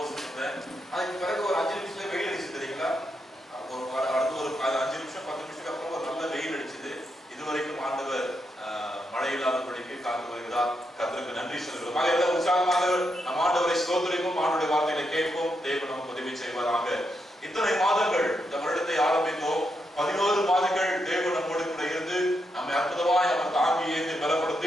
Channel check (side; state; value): both; normal; correlation 0.82